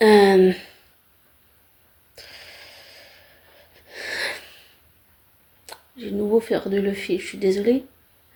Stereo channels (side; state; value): both; identical; correlation 1.00